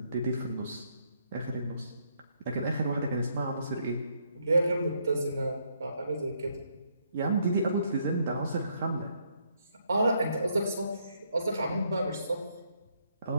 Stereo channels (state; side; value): inverted; both; correlation -0.73